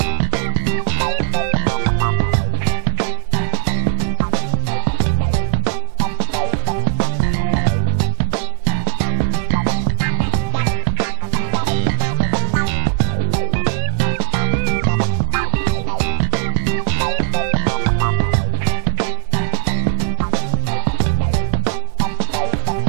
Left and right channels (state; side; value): silent; left; digital silence